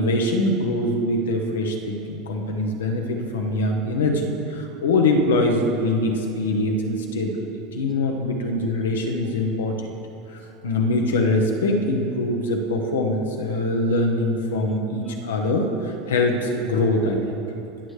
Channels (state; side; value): normal; both; correlation 0.00